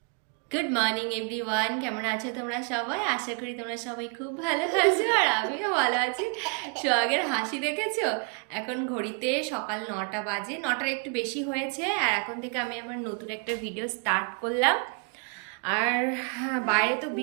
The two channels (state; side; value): quieter; left; 36.6 dB